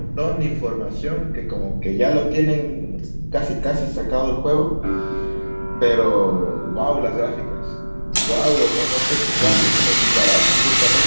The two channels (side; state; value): both; inverted; correlation -1.00